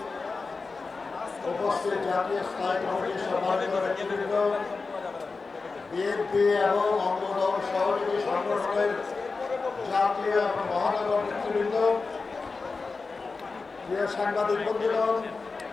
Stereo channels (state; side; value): quieter; right; 4.2 dB